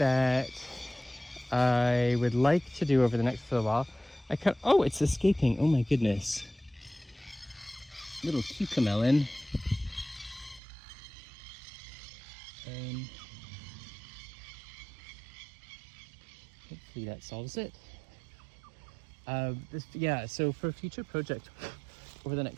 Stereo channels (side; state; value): left; drops out; at 10.6 s